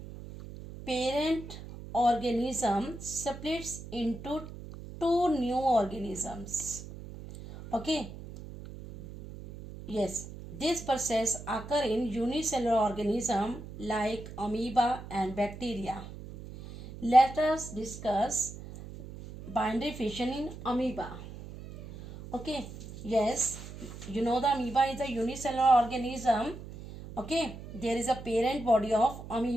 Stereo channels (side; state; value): right; noise; hum, 13 dB below the sound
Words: parent organism splits into two new organisms. Okay. Yes, this process occurs in unicellular organism like amoeba and bacteria. Let us discuss binary fission in amoeba. Okay, yes, you know the amoeba is a unicellular organism. Okay, there is a parent body of